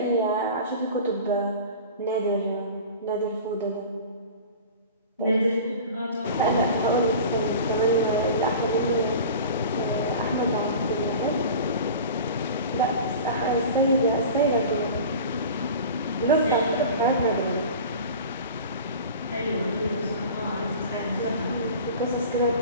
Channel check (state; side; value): inverted; both; correlation -0.37